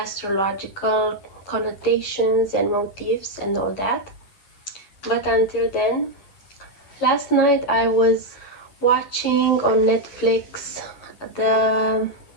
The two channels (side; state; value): right; late; 11 ms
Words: connotations and motifs and all that. But until then, last night I was watching on Netflix the